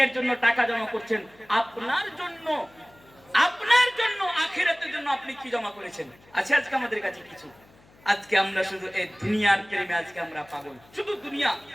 জন্য টাকা জমা করছেন, আপনার জন্য আখিরাতের জন্য আপনি কি জমা করেছেন? আছে আজকে আমাদের কাছে কিছু? আজকে আমরা শুধু এই দুনিয়ার প্রেমে আজকে আমরা পাগল, শুধু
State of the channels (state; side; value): noise; left; hum, 28 dB below the sound